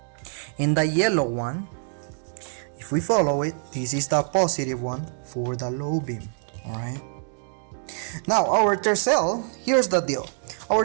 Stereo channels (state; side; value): silent; left; digital silence